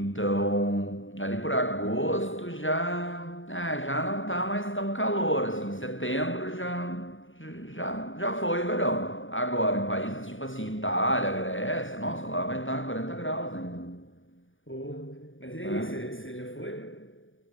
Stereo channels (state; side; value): late; right; 0.57 ms